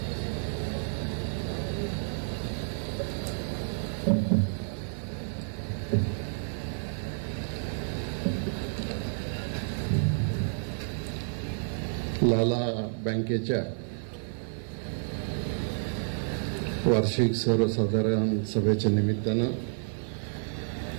लाला बँकेच्या वार्षिक सर्वसाधारण सभेच्या निमित्तानं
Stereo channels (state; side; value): silent; left; digital silence